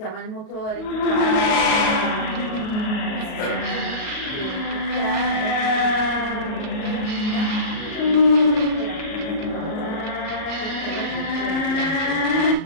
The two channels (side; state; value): right; late; 37 ms